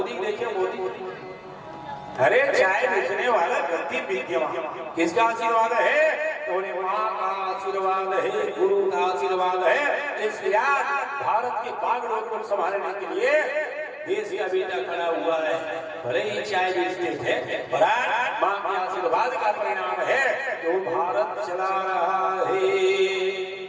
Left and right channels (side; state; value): both; identical; correlation 1.00